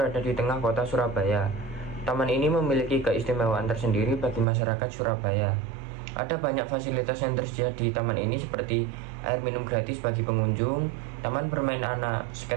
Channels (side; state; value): left; drops out; at 4.5 s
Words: di tengah kota Surabaya. Taman ini memiliki keistimewaan tersendiri bagi masyarakat Surabaya. Ada banyak fasilitas yang tersedia di taman ini seperti air minum gratis bagi pengunjung, taman bermain anak,